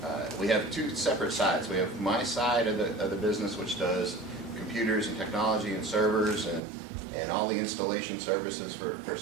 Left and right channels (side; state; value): left; drops out; at 6.6 s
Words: we have two separate sides. We have my side of the business, which does computers and technology and servers and all the installation services for